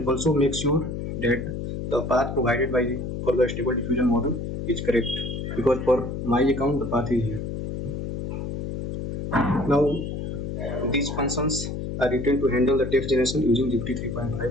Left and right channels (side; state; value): left; noise; hum, 5 dB below the sound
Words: also make sure that the path provided by for the stable diffusion model is correct, because for my account the path is here. Now these functions are written to handle the text generation using GPT